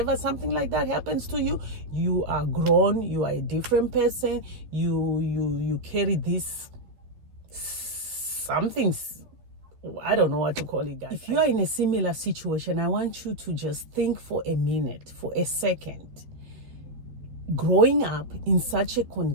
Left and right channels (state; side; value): late; left; 12 ms